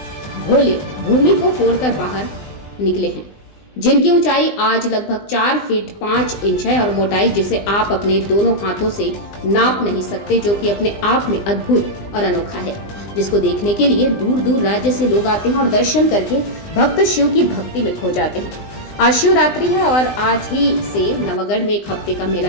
भोले भूमि को फोड़कर बाहर निकले हैं, जिनकी ऊंचाई आज लगभग 4 फीट 5 इंच है और मोटाई जिसे आप अपने दोनों हाथों से नाप नहीं सकते, जो कि अपने आप में अद्भुत और अनोखा है, जिसको देखने के लिए दूर दूर राज्य से लोग आते हैं और दर्शन करके भक्त शिव की भक्ति में खो जाते हैं। आज शिवरात्रि है और आज ही से नवागढ़ में एक हफ्ते का मेला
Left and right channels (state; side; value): late; right; 20 ms